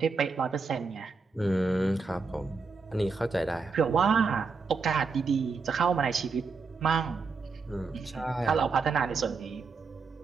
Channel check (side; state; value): left; quieter; 4.6 dB